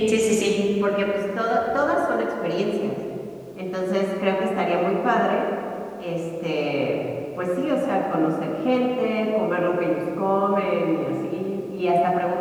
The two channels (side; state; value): both; identical; correlation 1.00